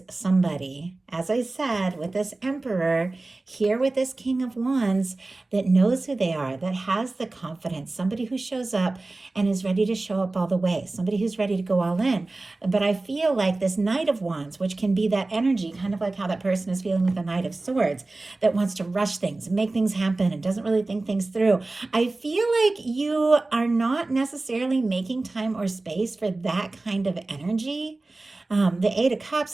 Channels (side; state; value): left; quieter; 3.1 dB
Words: somebody, as I said, with this Emperor, here with this King of Wands, that knows who they are, that has the confidence, somebody who shows up and is ready to show up all the way, somebody who's ready to go all in. But I feel like this Knight of Wands, which can be that energy, kind of like how that person is feeling with the Knight of Swords, that wants to rush things, make things happen, and doesn't really think things through. I feel like you are not necessarily making time or space for that kind of energy. The Eight of